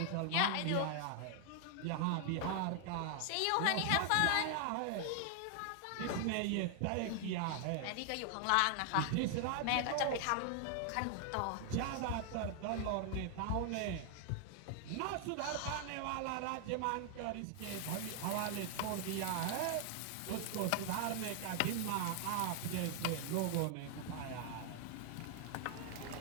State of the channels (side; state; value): both; different; correlation 0.00